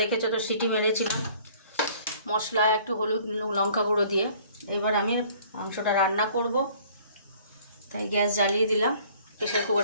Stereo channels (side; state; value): both; inverted; correlation -0.55